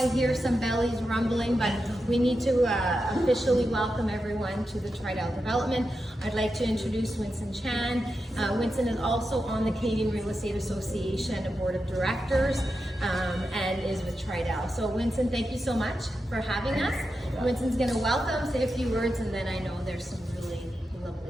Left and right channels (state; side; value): normal; both; correlation 0.89